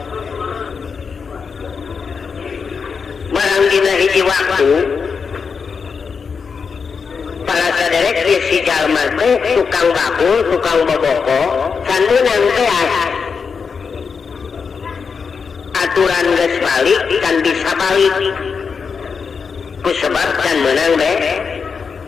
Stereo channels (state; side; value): quieter; right; 5.7 dB